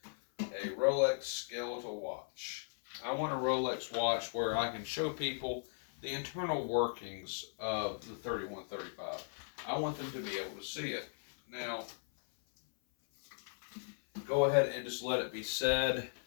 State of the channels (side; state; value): right; silent; 53 dB below the other